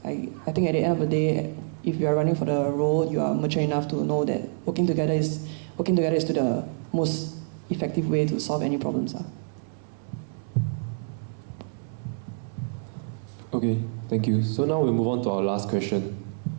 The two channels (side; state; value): left; silent; 60 dB below the other